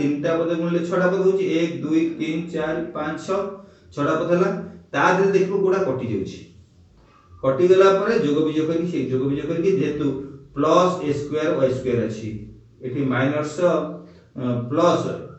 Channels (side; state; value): both; identical; correlation 1.00